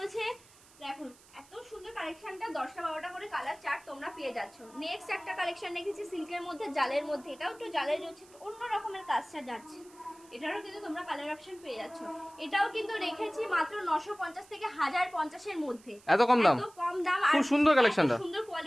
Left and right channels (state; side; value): noise; right; hiss, 25 dB below the sound